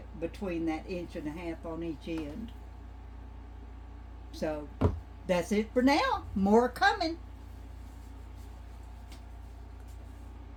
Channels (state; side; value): identical; both; correlation 1.00